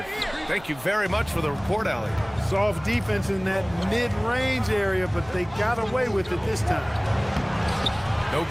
Thank you very much for the report, Allie. Soft defense in that mid-range area, but they got away with it this time. No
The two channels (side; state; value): right; noise; hum, 20 dB below the sound